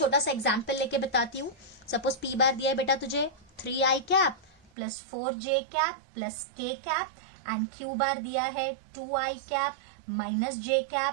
सा एग्जांपल लेके बताती हूँ। सपोज p बार दिया है बेटा तुझे 3i cap plus 4j cap plus k cap, and q बार दिया है 2i cap minus j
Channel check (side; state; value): left; drops out; at 4.7 s